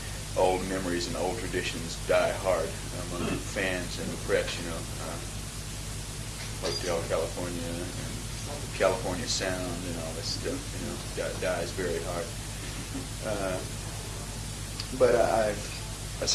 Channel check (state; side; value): identical; both; correlation 1.00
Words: memories and old traditions die hard among fans and the press. Hotel California and California Sound and all this stuff, dies very hard. But